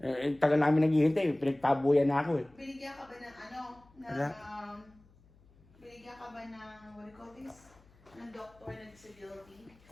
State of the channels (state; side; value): noise; left; hum, 28 dB below the sound